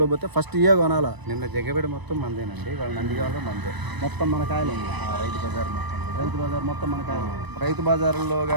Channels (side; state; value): left; late; 1.0 ms